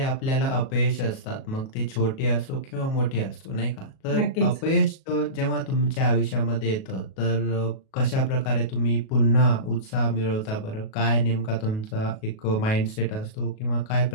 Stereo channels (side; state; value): right; late; 37 ms